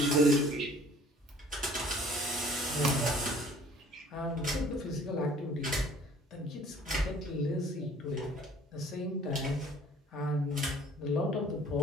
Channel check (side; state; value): both; normal; correlation 0.53